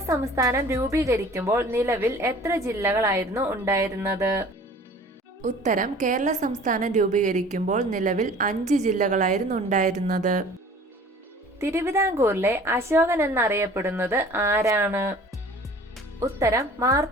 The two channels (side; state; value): both; normal; correlation 0.47